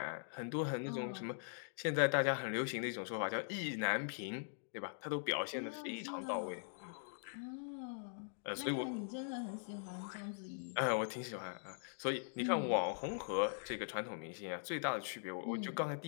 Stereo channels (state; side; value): silent; right; digital silence